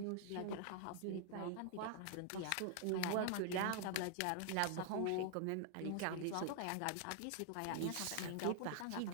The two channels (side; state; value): both; different; correlation 0.00